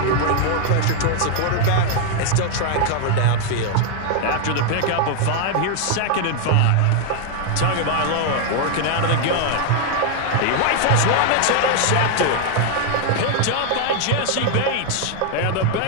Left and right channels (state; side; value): different; both; correlation 0.00